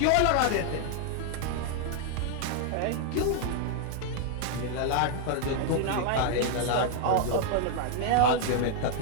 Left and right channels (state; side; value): different; both; correlation 0.00